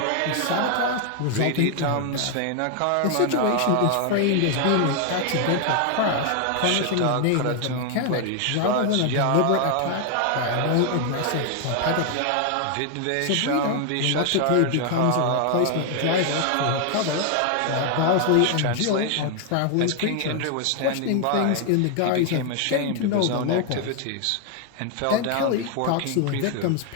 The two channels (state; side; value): different; both; correlation 0.00